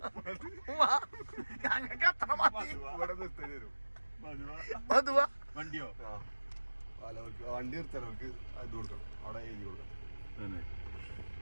ഞങ്ങൾക്ക് അത്ര മതി. മധുവ വണ്ടിയോ? വണ്ടി നിർത്തലവർക്ക് ഇത് കൊടുക്കണം. അവിടെ എഴുതി കൊടുക്കണം.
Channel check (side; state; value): both; inverted; correlation -1.00